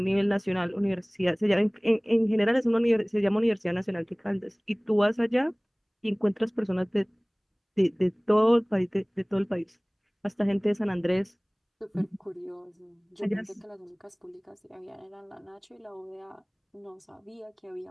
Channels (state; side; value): identical; both; correlation 1.00